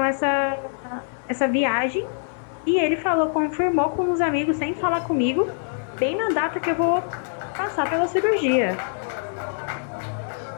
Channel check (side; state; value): right; silent; 59 dB below the other